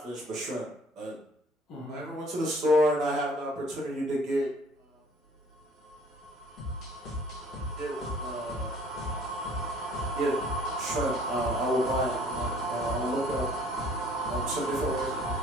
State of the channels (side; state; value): both; normal; correlation 0.54